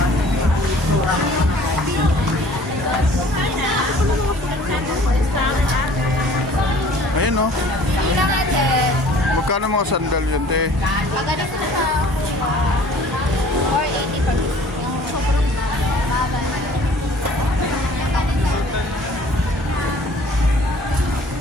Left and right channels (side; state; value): both; normal; correlation 0.51